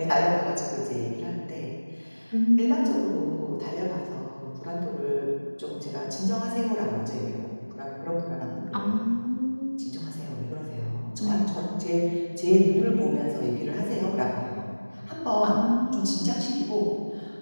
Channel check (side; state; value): both; inverted; correlation -1.00